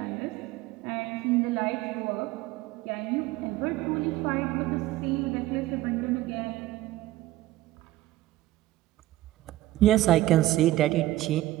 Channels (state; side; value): quieter; left; 15.9 dB